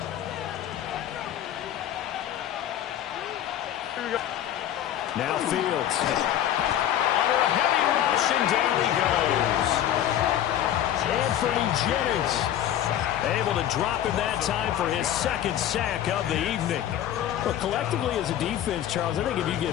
Now Fields. Under a heavy rush, and down he goes. Anthony Jennings able to drop him that time for his 2nd sack of the evening. Well, collectively as a defense, Charles, I think if you get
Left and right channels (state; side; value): quieter; right; 11.3 dB